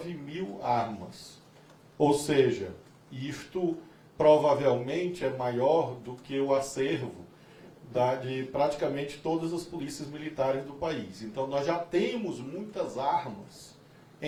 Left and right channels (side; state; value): both; identical; correlation 1.00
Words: mil armas. Ou seja, isto provavelmente é maior do que o acervo de praticamente todas as polícias militares do país. Então, nós já temos muitas armas